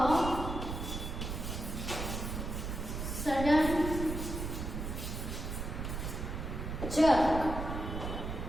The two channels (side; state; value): right; noise; rumble, 4 dB below the sound